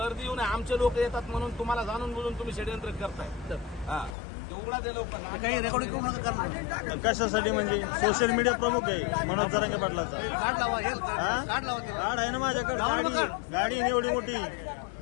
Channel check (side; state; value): right; drops out; at 4.2 s